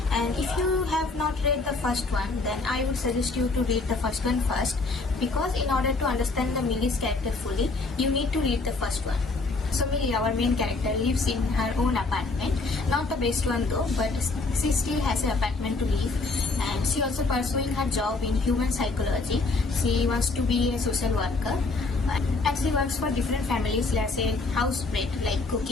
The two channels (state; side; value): quieter; right; 3.7 dB